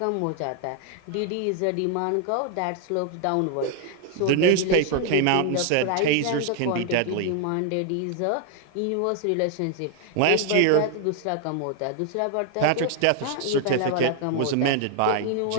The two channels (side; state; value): both; different; correlation 0.00